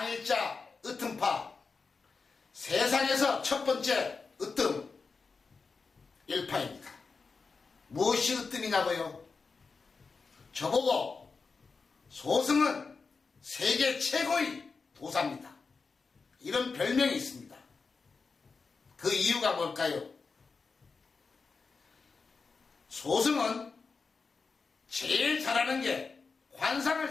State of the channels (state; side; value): quieter; right; 4.7 dB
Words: 으뜸파, 세상에서 첫 번째 으뜸 일파입니다. 무엇이 으뜸이냐고요? 저보고 소승은 세계 최고의 도사입니다. 이런 별명이 있습니다. 그 이유가 뭘까요? 소승은 제일 잘하는 게 관상을